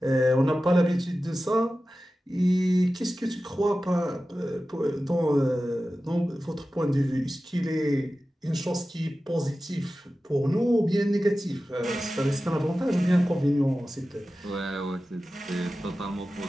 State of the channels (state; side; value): normal; both; correlation 0.94